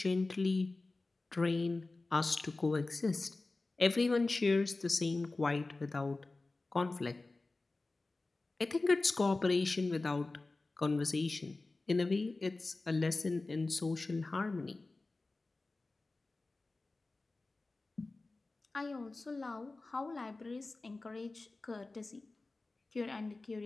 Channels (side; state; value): right; quieter; 3.3 dB